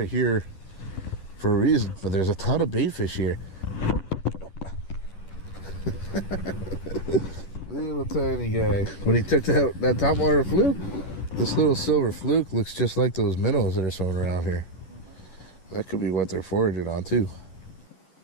here for a reason, but there's a ton of bait fish here. Little tiny guy. When he took that topwater fluke, this little silver fluke looks just like those minnows that are swimming around here. That could be what they're foraging on too.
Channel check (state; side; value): late; right; 11 ms